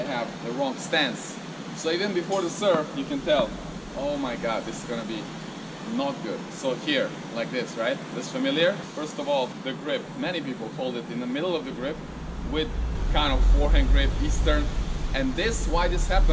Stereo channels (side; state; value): both; identical; correlation 1.00